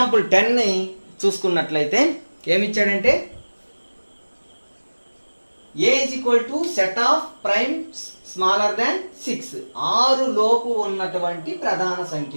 10 ని చూసుకున్నట్లయితే ఏమి ఇచ్చాడంటే a is equal to set of primes smaller than 6. 6 లోపు ఉన్నటువంటి ప్రధాన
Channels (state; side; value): inverted; both; correlation -1.00